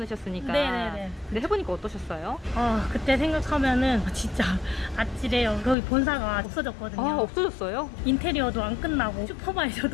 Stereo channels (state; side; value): drops out; right; at 5.8 s